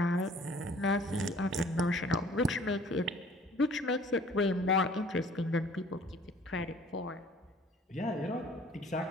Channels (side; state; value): both; normal; correlation 0.53